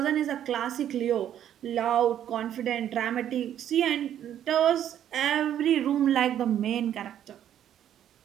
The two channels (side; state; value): left; quieter; 10.5 dB